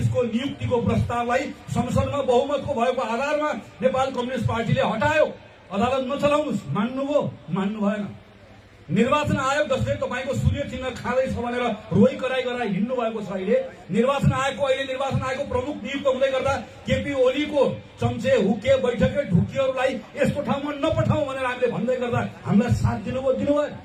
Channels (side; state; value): both; identical; correlation 1.00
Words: नियुक्तिको प्रस्तावलाई संसदमा बहुमतको भएको आधारमा नेपाल कम्युनिस्ट पार्टीले हटायो। अदालत नचलाउनुस्, मान्नुभयो, मान्नु भएन। निर्वाचन आयोग जसले तपाईको सूर्य चिन्ह खाँदैछ भनेर रोइ कराई गराई हिँड्नु भएको छ। अहिले निर्वाचन आयोगको प्रमुख नियुक्त हुँदै गर्दा केपी ओलीको चम्चे हुके बैठके ढुकीहरूलाई यस्तो ठाउँमा नपठाऊ भनेर हामीले भन्दै गर्दा हामीलाई साथ दिनुभयो।